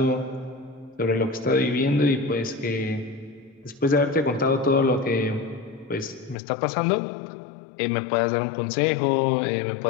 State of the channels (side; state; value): right; drops out; at 6.4 s